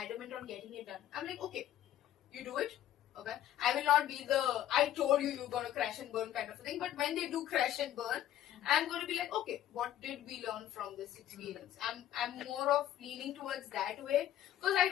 on getting it done. I'm like, okay, you do it. Okay, I will not be the I told you you're gonna crash and burn kind of a thing. But when they do crash and burn, I'm gonna be like, okay, what did we learn from this experience? I'm more of leaning towards that way because I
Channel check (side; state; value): right; quieter; 12.0 dB